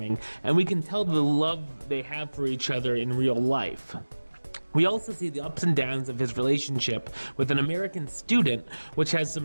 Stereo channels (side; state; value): both; inverted; correlation -1.00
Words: and we can tell the love they have for each other in real life. We also see the ups and downs of his relationship with an American student, which has